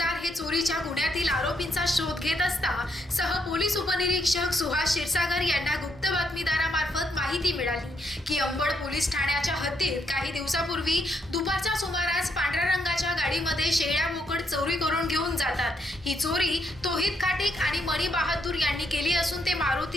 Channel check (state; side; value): normal; both; correlation 0.76